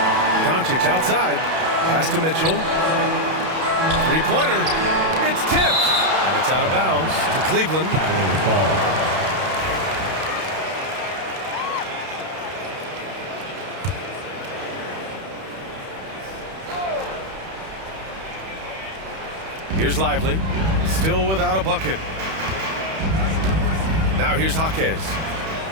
Doncic outside. Pass to Mitchell. Three-pointer. It's tipped. And it's out of bounds to Cleveland. Cavalier ball. Here's Lively, still without a bucket. Now here's Jaquez.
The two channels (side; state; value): left; late; 31 ms